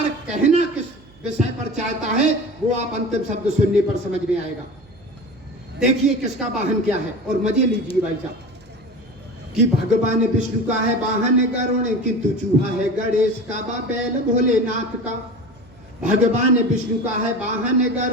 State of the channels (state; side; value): noise; right; hum, 27 dB below the sound